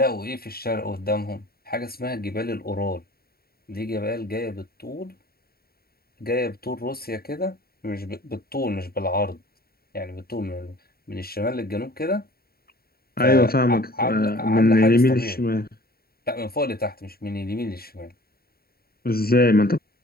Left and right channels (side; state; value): right; late; 0.44 ms